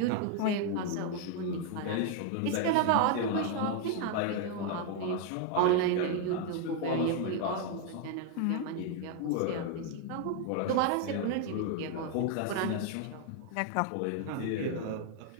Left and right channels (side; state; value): both; different; correlation 0.00